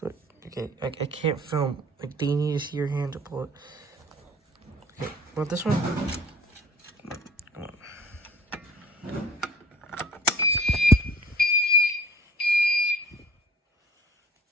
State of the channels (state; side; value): normal; both; correlation 0.49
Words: Okay, I can't film. Like, do you need to see your hand to pull it? Okay, want this one? Come on.